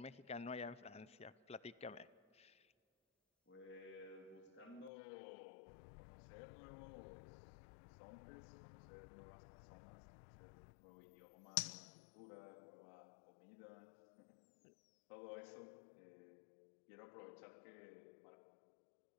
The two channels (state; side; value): drops out; right; at 4.9 s